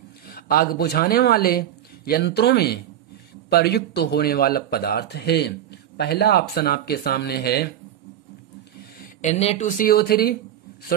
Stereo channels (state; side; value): quieter; left; 11.2 dB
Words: आग बुझाने वाले यंत्रों में प्रयुक्त होने वाला पदार्थ है। पहला ऑप्शन आपके सामने है Na2CO3